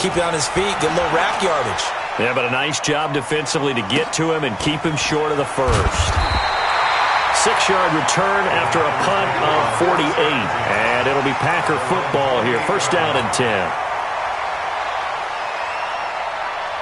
it on his feet, get a little rack yardage. Yeah, but a nice job defensively to get to him and keep him short of the first. 6-yard return after a punt of 48. And it'll be Packer football here. First down and 10.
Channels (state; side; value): identical; both; correlation 1.00